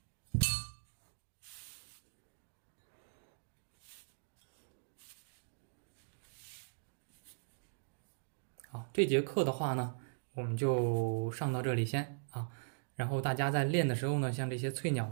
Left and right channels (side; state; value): left; silent; digital silence